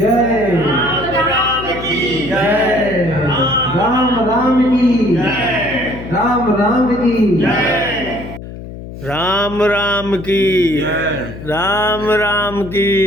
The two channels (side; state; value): left; noise; hum, 12 dB below the sound